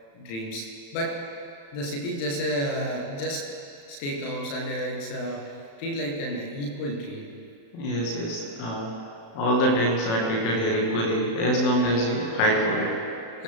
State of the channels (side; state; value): right; late; 35 ms